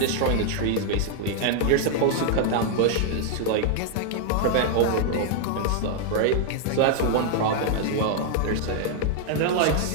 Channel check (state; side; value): different; both; correlation 0.00